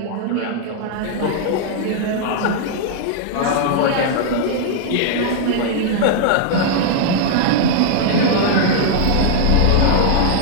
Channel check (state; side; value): different; both; correlation -0.01